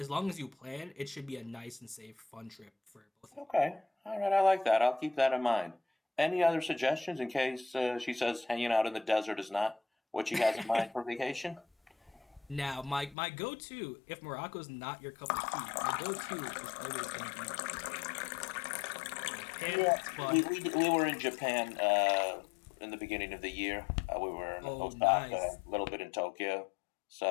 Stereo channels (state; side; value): drops out; right; at 13.2 s